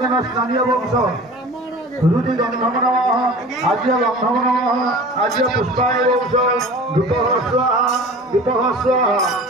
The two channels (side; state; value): both; normal; correlation 0.40